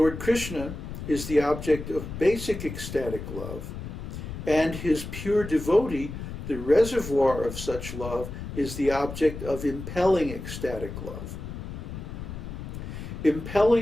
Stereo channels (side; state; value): left; noise; rumble, 8 dB below the sound